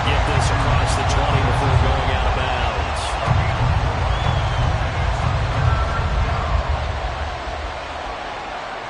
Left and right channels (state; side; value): identical; both; correlation 1.00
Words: get this across the 20 before going out of bounds.